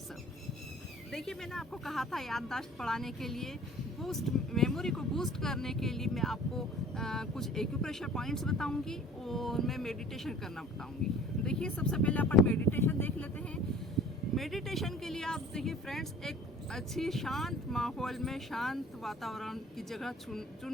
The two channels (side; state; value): both; normal; correlation 0.47